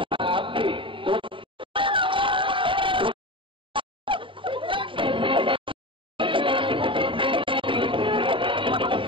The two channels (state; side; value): late; left; 0.25 ms